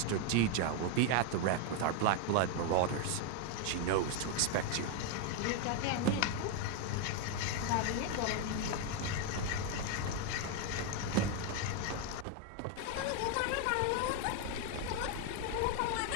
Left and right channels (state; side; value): different; both; correlation 0.01